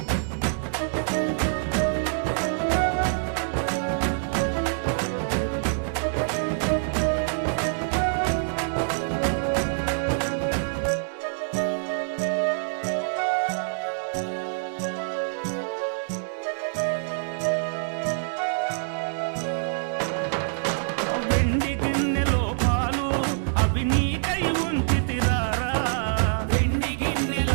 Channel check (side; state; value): left; silent; digital silence